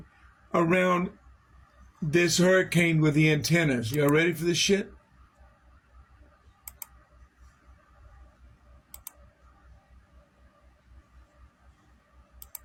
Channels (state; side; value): identical; both; correlation 1.00